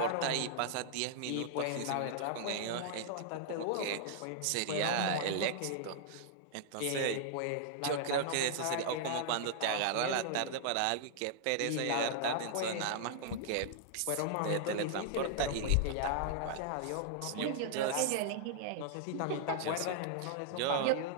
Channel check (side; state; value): both; different; correlation -0.01